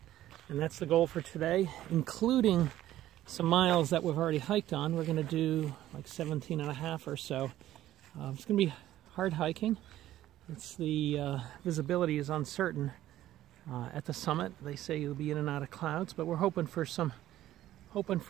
And that's the goal for today, including some miles that we've already hiked on. We're going to do like 17 and a half or so. It's going to be hard hiking. It's the visibility is uncertain at the summit. They say you'll be in and out of clouds, but we're hoping for some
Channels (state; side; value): quieter; left; 13.7 dB